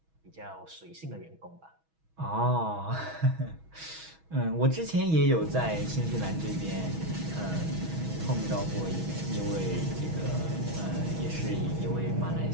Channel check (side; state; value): left; late; 6.2 ms